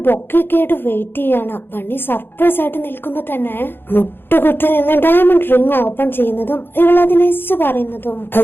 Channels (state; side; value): late; right; 0.10 ms